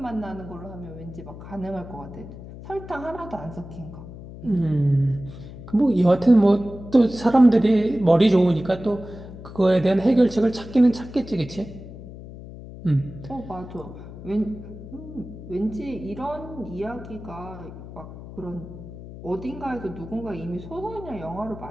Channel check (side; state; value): left; noise; hum, 14 dB below the sound